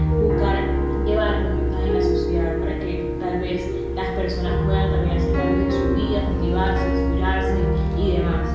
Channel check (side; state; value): both; identical; correlation 1.00